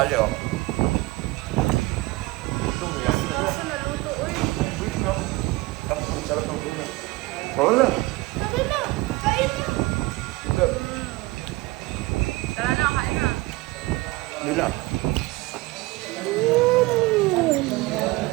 oh. Sarap ng tuna. Wala.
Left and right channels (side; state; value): left; quieter; 21.9 dB